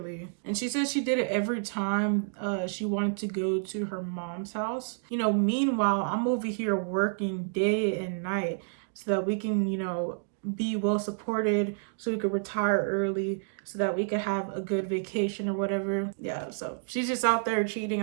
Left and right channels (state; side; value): silent; left; digital silence